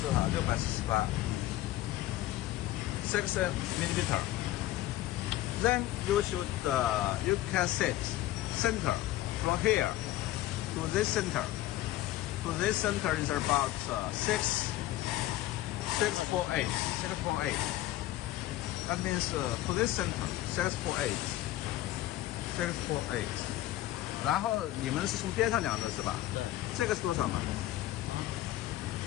多少？648 6 millimeter. Then you should you can set center from here to this center. To this center is about 648. That means to this center 648. 648. 然后你们是从边上量的是吧？对。这个是多少嘛？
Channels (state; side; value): quieter; right; 15.1 dB